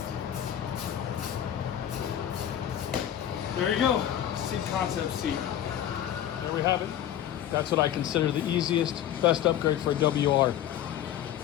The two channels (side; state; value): right; quieter; 10.9 dB